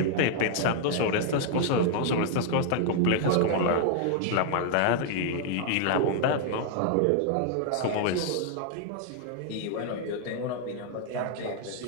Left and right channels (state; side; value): different; both; correlation 0.00